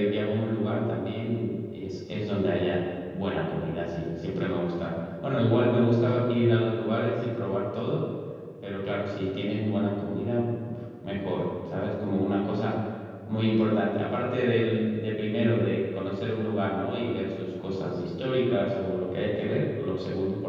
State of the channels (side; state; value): both; identical; correlation 1.00